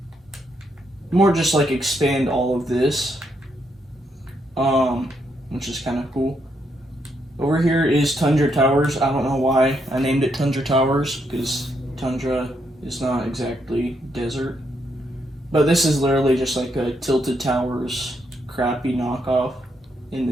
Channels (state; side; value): normal; both; correlation 0.77